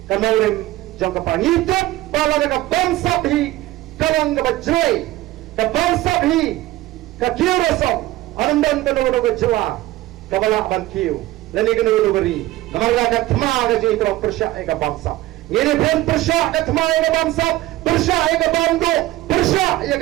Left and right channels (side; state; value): left; quieter; 16.5 dB